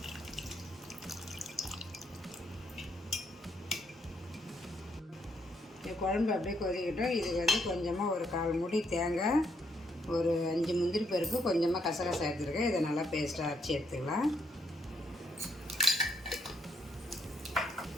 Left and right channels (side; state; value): both; normal; correlation 0.74